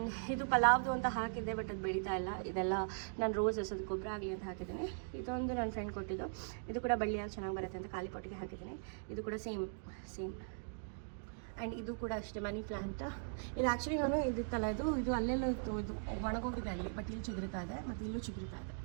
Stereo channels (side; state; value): left; silent; digital silence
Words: ಇದು ಪಲಾವ್ದು ಅಂತ ಹಾಕಿದ್ದೆ, ಬಟ್ ಅದು ಬೆಳೀತಾ ಇಲ್ಲ. ಇದೆಲ್ಲ ನಾನು ರೋಸಸ್ ಅದು ಗೊಬ್ಬರ ಆಗಲಿ ಅಂತ ಹಾಕಿದ್ದೀನಿ. ಇದೊಂದು ನನ್ನ ಫ್ರೆಂಡ್ ಕೊಟ್ಟಿದ್ದು. ಇದು ಕೂಡ ಬಳ್ಳಿಯಾಗಿ ಚೆನ್ನಾಗಿ ಬರುತ್ತೆ ಅಂತ ಖಾಲಿ ಪೊಟ್ಟಿಗೆ ಹಾಕಿದ್ದೀನಿ. ಇದು ಕೂಡ ಸೇಮ್. ಆ್ಯಂಡ್ ಇದು ಕೂಡ ಅಷ್ಟೇ ಮನಿ ಪ್ಲ್ಯಾಂಟ್. ಇದು ಆ್ಯಕ್ಚುಲಿ ನಾನು ಇದಿತ್ತಲ್ಲ, ಇದು ಅಲ್ಲೆಲ್ಲ ಇತ್ತು, ಇದು ಒಣಗೋಗಿದೆ ಅಲ್ಲಿ. ಬಟ್ ಇಲ್ಲಿ ಚಿಗುರಿತಾ ಇದೆ, ಮತ್ತು ಇಲ್ಲೂ ಚಿಗುರಿತಾ ಇದೆ.